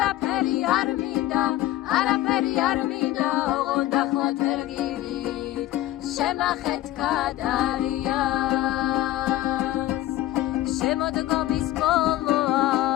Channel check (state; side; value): quieter; right; 14.9 dB